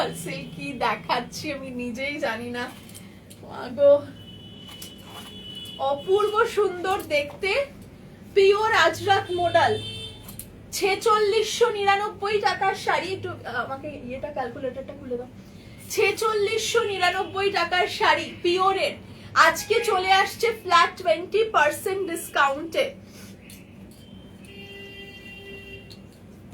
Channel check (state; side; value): identical; both; correlation 1.00